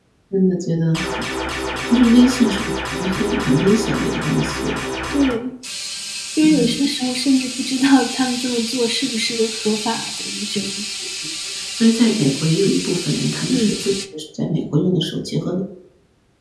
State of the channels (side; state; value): both; identical; correlation 1.00